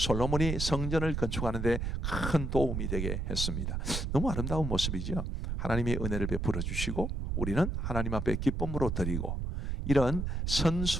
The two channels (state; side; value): noise; right; rumble, 1 dB below the sound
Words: 성전을 건축하는데 큰 도움이 되게 했습니다. 너무 아름다운 모습이죠. 하나님의 은혜를 베풀어 주시고 우리는 하나님 앞에 기쁨으로 드리고 이런